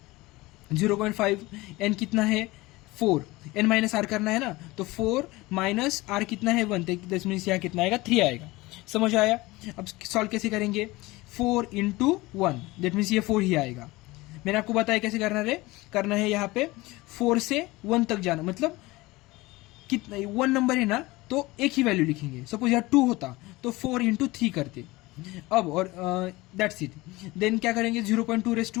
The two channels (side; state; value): right; quieter; 20.8 dB